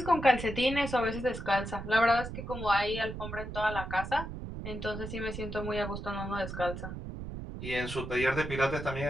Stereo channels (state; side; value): noise; right; rumble, 8 dB below the sound